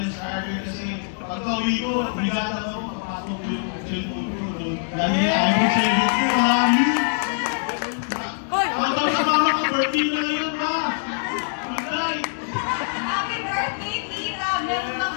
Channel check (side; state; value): right; silent; 61 dB below the other